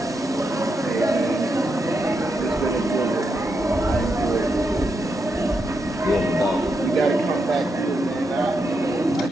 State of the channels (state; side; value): normal; both; correlation 0.83